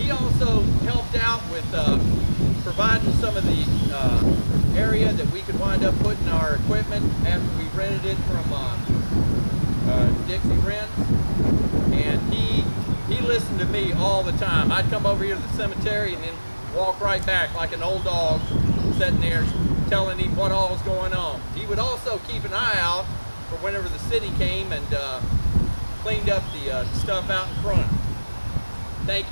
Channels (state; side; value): inverted; both; correlation -1.00